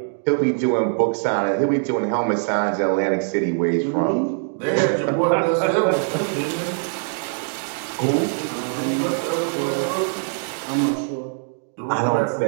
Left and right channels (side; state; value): left; silent; 59 dB below the other